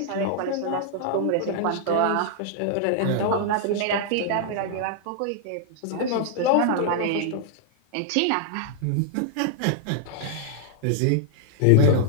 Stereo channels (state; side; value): different; both; correlation 0.00